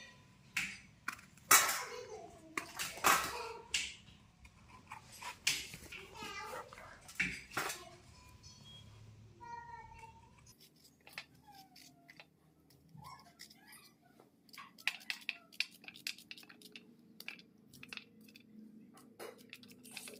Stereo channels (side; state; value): both; identical; correlation 1.00